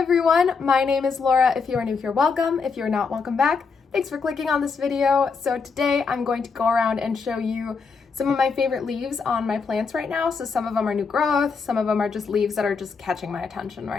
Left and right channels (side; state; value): right; quieter; 5.1 dB